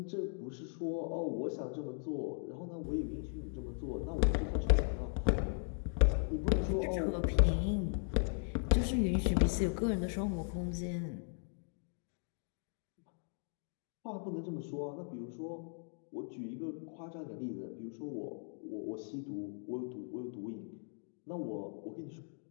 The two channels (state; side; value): silent; right; 53 dB below the other